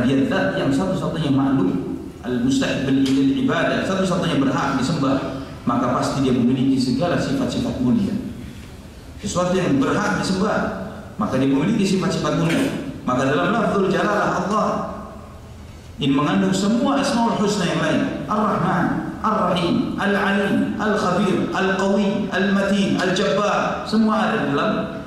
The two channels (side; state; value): both; identical; correlation 1.00